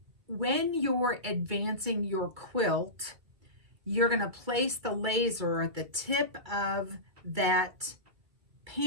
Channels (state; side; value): late; left; 2.3 ms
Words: when you're advancing your quilt, you're going to place the laser at the tip of that